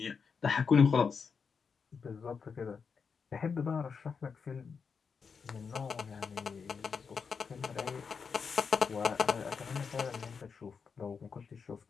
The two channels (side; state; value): right; quieter; 5.8 dB